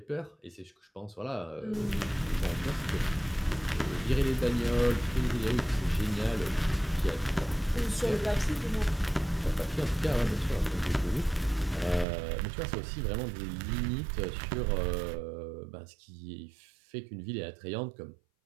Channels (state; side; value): drops out; left; at 12.1 s